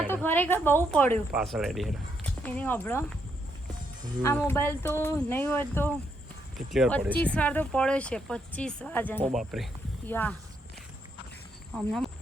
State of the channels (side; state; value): both; normal; correlation 0.77